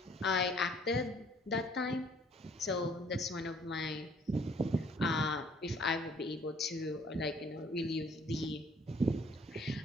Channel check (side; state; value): both; normal; correlation 0.60